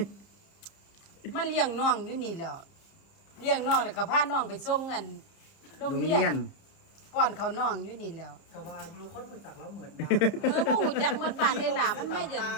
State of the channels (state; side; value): late; right; 30 ms